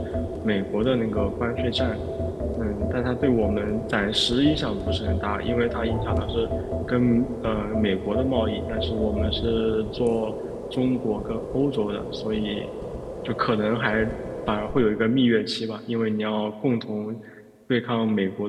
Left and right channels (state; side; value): identical; both; correlation 1.00